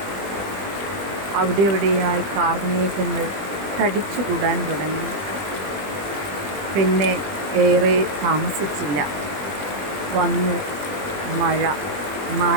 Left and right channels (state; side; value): late; left; 20 ms